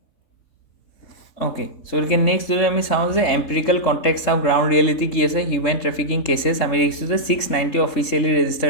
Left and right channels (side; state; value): right; late; 3.6 ms